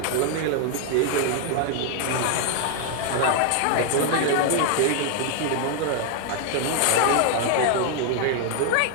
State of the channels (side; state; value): both; different; correlation 0.00